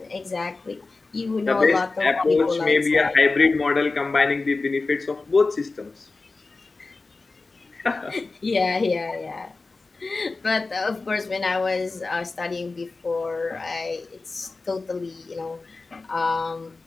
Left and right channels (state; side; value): quieter; right; 3.7 dB